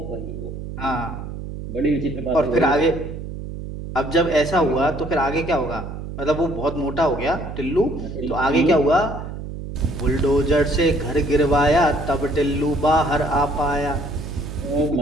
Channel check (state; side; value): noise; right; hum, 8 dB below the sound